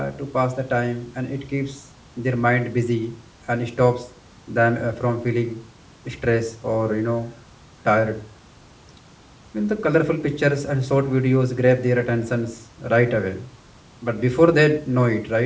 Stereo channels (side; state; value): both; identical; correlation 1.00